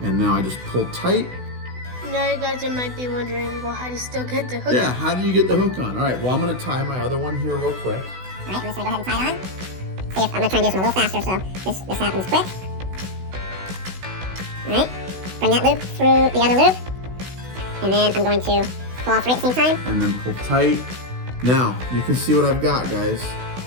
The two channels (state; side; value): late; left; 16 ms